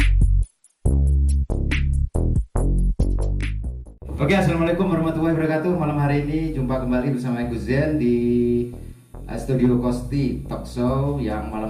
Oke, assalamualaikum warahmatullahi wabarakatuh. Malam hari ini jumpa kembali bersama Gus Zen di Studio Kosti Talk Show. Yang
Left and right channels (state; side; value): identical; both; correlation 1.00